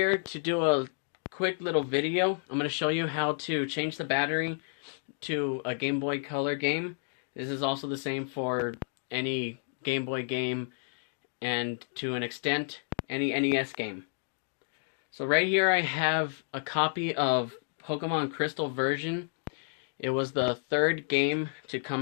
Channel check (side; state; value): right; silent; 57 dB below the other